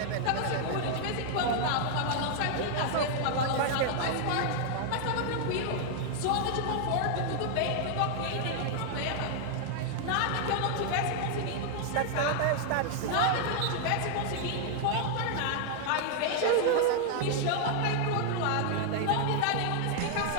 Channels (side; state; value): both; different; correlation 0.00